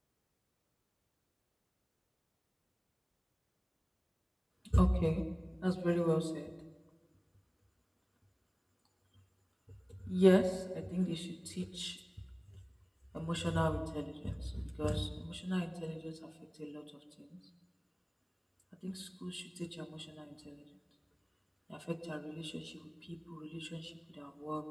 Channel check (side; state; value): both; identical; correlation 1.00